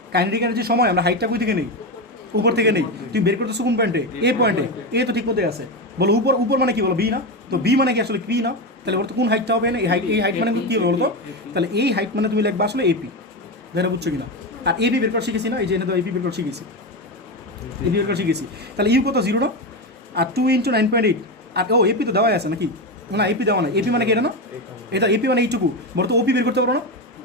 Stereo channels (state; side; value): normal; both; correlation 0.15